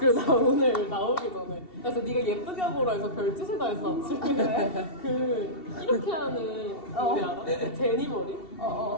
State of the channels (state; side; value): late; right; 2.7 ms